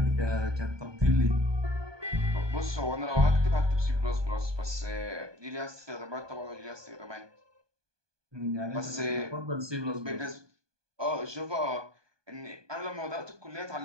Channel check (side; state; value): left; late; 1.2 ms